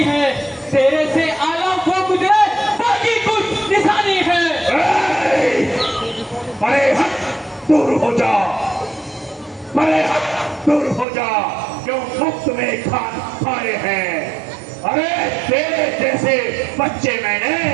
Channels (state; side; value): drops out; left; at 11.1 s